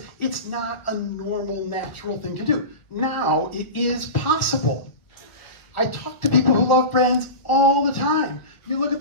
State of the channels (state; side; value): late; right; 1.9 ms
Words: it's not a normal, natural thing to do. Now, it is possible. I talk to people who love brands all the time. You look at